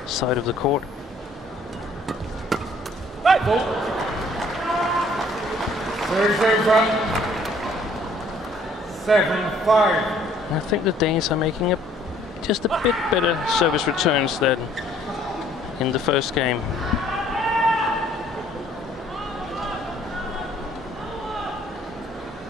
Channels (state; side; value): normal; both; correlation 0.60